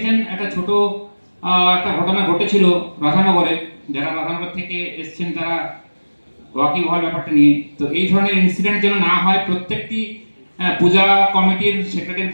একটা ছোট একটা ঘটনা ঘটেছিল রাধানগরে, যারা রাধানগর থেকে এসছেন তারা ওয়াকিব হওয়ার ব্যাপারটা নিয়ে। তো এই ধরনের ইনসিডেন্ট যেন না হয়, প্রত্যেকটি পূজা কমিটির সেক্রেটারি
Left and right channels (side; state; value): both; inverted; correlation -1.00